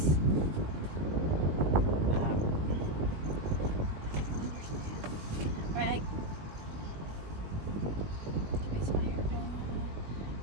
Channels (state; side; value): late; left; 20 ms